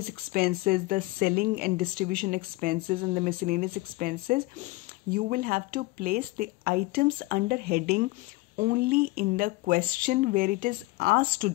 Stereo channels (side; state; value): right; quieter; 21.7 dB